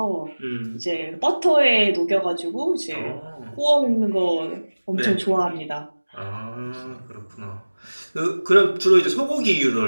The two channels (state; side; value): inverted; both; correlation -1.00